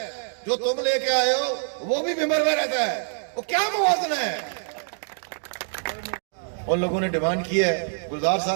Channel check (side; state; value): left; silent; digital silence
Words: जो तुम लेके आए हो वो भी भिंबर में रहता है, वो क्या मुवाजना है? उन लोगों ने डिमांड की है, गुलजार